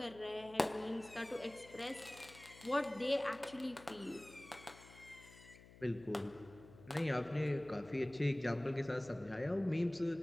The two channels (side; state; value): left; noise; hum, 20 dB below the sound